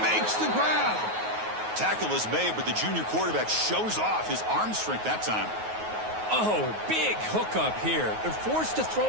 makes the grab. Tackle is made, but the junior quarterback shows off his arm strength that time. Oh, big hookup here. They're forced to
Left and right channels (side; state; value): left; late; 9.4 ms